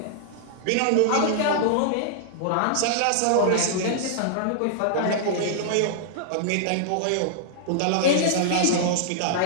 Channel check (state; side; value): different; both; correlation -0.01